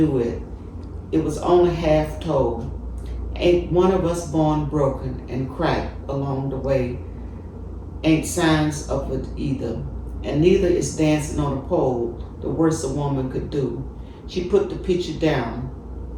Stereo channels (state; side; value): identical; both; correlation 1.00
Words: it. It was only half told. Ain't one of us born broken and cracked along the way. Ain't signs of it either. And neither is dancing on a pole the worst a woman could do. She put the picture down.